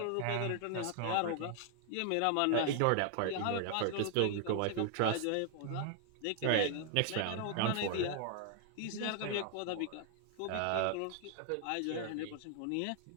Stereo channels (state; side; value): different; both; correlation 0.00